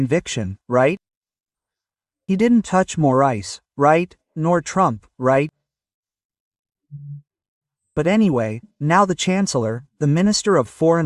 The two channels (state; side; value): identical; both; correlation 1.00